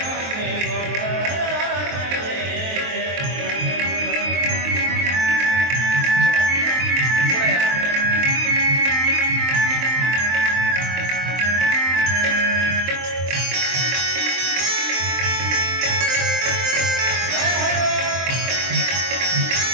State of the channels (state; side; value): late; left; 23 ms